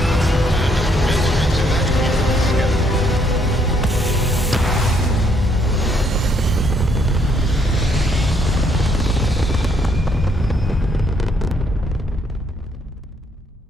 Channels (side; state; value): both; normal; correlation 0.70